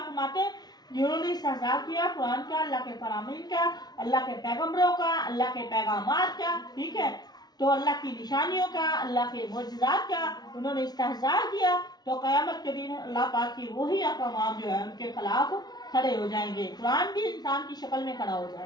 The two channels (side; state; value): right; late; 0.19 ms